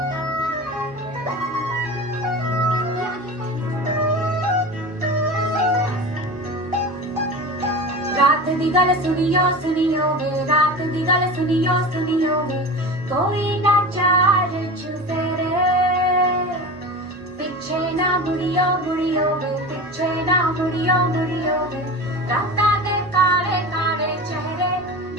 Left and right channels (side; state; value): both; normal; correlation 0.30